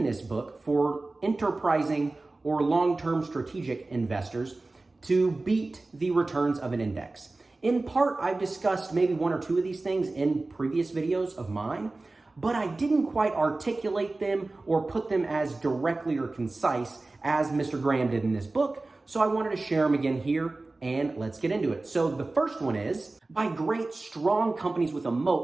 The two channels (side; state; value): left; quieter; 3.2 dB